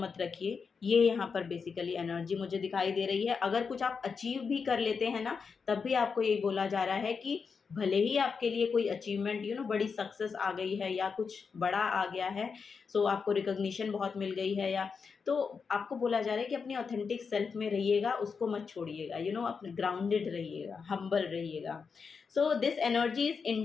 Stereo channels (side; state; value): right; quieter; 5.5 dB